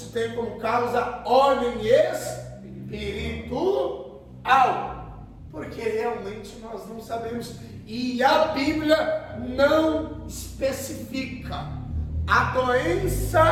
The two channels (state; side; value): identical; both; correlation 1.00